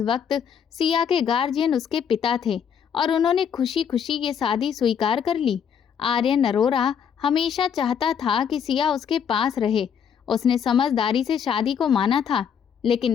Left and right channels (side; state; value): right; quieter; 7.7 dB